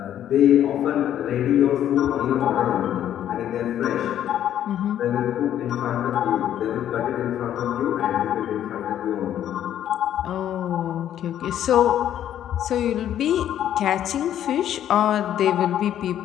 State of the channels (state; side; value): quieter; right; 10.9 dB